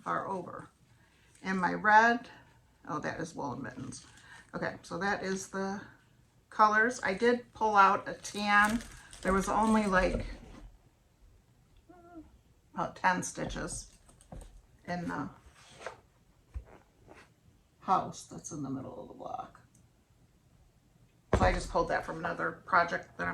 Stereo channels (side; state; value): both; identical; correlation 1.00